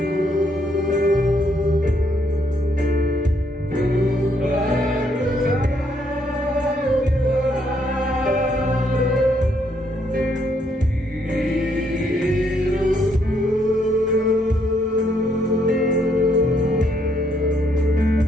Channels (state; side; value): normal; both; correlation 0.72